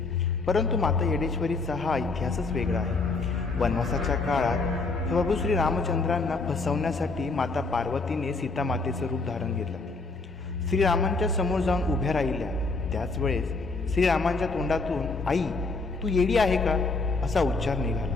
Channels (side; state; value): right; quieter; 3.8 dB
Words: परंतु माता येडेश्वरीचा हा इतिहासच वेगळा आहे. वनवासाच्या काळात प्रभू श्री रामचंद्रांना फसवण्यासाठी माता पार्वतीने सीता मातेचं रूप धारण घेतलं. श्रीरामांच्या समोर जाऊन उभ्या राहिल्या. त्याच वेळेस श्रीरामांच्या तोंडातून "आई, तू येडी आहे का?" असा उच्चार निघाला.